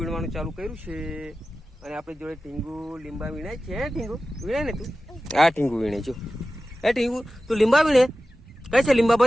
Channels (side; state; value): both; normal; correlation 0.94